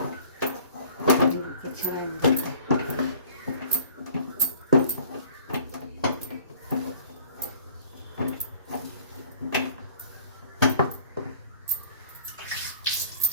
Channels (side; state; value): both; inverted; correlation -0.50